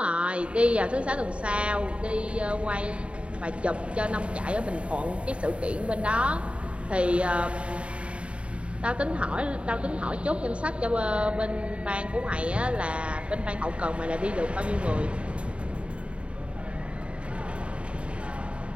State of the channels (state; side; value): late; left; 0.060 ms